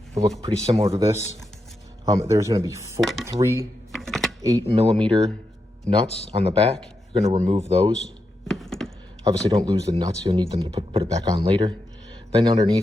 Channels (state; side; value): normal; both; correlation 0.86